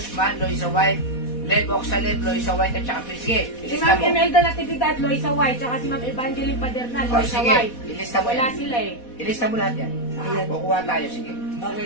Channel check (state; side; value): late; right; 4.1 ms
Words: Loisa White, Lev Oxalep, Loisa White, at saka sige, Si ilista Ma'am mo. Imelda Natividad, Loisa White, tsaka si Ma'am Evangeline Padernal, O, Loisa sige, White. ilista mo Wala yan. sila eh. Ilista mo lahat yan. Ayan. Kukuha tayo, sige.